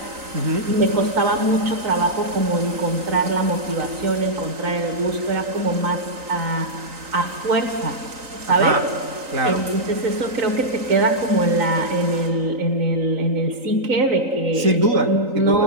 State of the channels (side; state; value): left; late; 3.9 ms